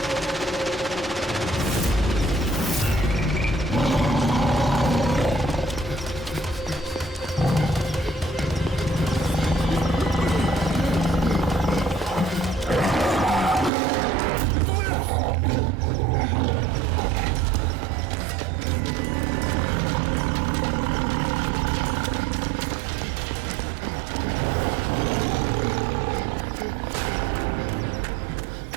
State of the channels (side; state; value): left; drops out; at 13.7 s